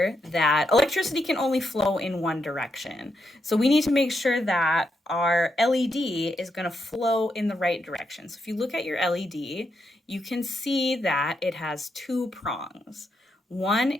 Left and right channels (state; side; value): normal; both; correlation 0.82